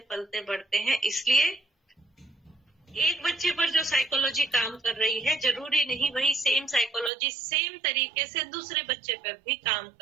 पलते बढ़ते हैं। इसलिए एक बच्चे पर जो साइकोलॉजी काम कर रही है, जरूरी नहीं वही सेम साइकोलॉजी सेम तरीके से दूसरे बच्चे पर भी काम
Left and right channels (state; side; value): drops out; left; at 7.1 s